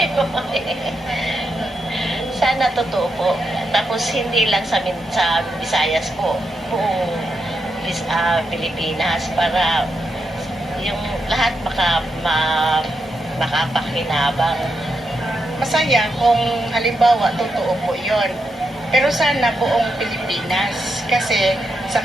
Sana totoo po. Tapos hindi lang sa Visayas po, buong Pilipinas para yung lahat makapakinabang. Masaya kung halimbawa totoo po yon. Pero sana buong Pilipinas kasi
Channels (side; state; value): both; normal; correlation 0.83